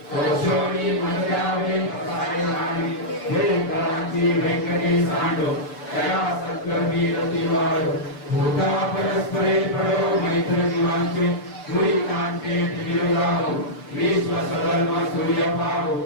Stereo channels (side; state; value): right; late; 6.7 ms